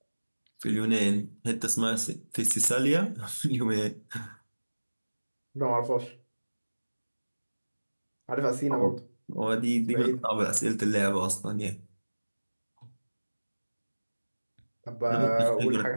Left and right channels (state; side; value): inverted; both; correlation -1.00